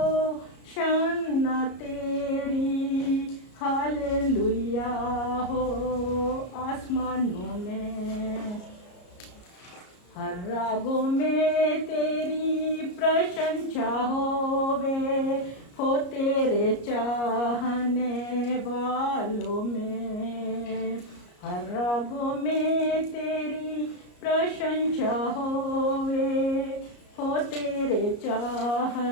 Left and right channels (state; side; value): late; right; 34 ms